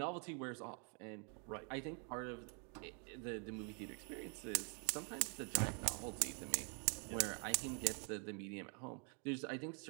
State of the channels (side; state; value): left; quieter; 38.7 dB